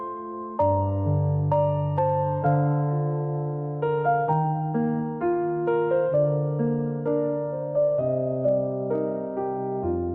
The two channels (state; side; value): identical; both; correlation 1.00